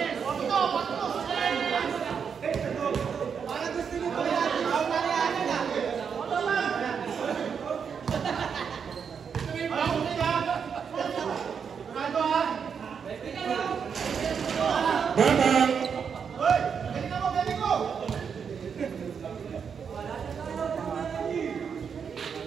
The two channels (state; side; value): quieter; left; 6.7 dB